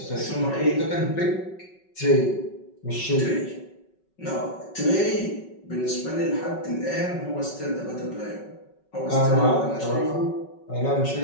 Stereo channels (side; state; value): right; late; 5.4 ms